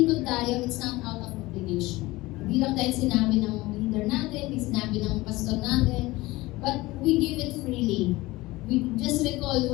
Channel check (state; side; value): quieter; right; 20.0 dB